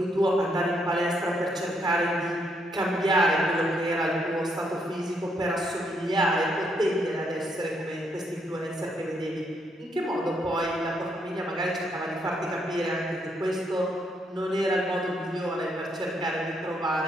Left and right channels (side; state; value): both; normal; correlation 0.75